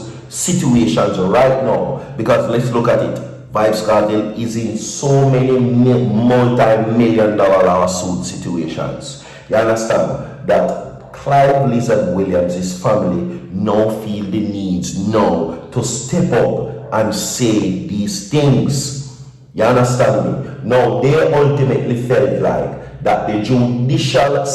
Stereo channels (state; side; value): identical; both; correlation 1.00